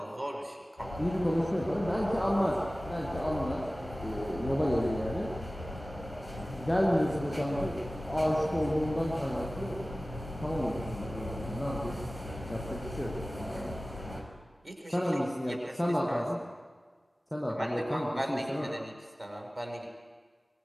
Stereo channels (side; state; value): both; normal; correlation 0.97